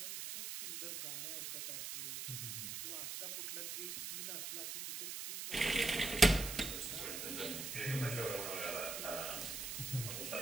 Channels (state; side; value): noise; right; hiss, 5 dB below the sound